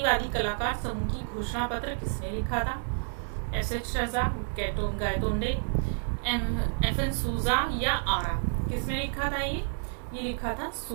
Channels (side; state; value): left; silent; digital silence